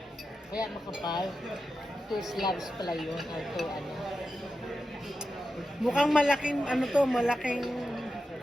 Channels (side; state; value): both; normal; correlation 0.90